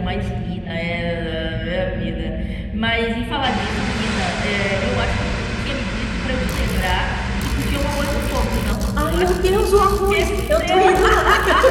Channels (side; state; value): both; identical; correlation 1.00